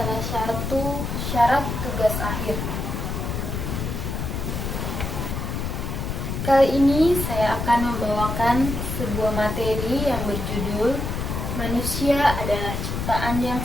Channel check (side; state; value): left; noise; rumble, 3 dB below the sound